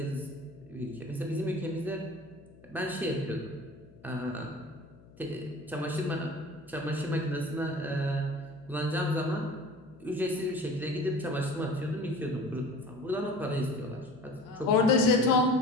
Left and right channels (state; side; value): noise; left; hum, 24 dB below the sound